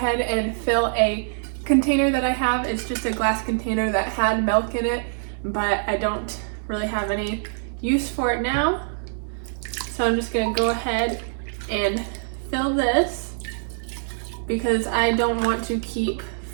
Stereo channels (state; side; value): silent; left; digital silence